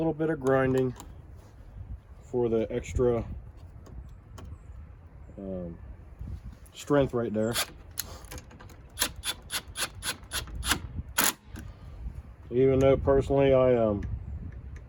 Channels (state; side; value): identical; both; correlation 1.00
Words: bit of grinding for the extra strength right there. Even though personally I